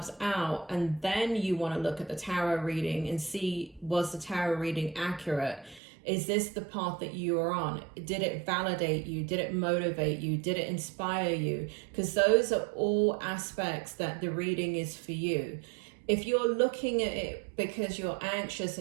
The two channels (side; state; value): left; drops out; at 5.8 s